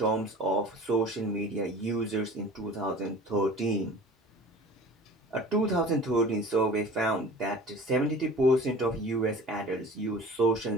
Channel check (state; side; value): normal; both; correlation 0.42